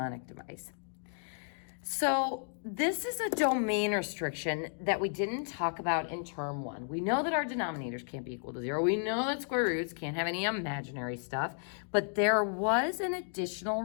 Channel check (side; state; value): right; silent; 56 dB below the other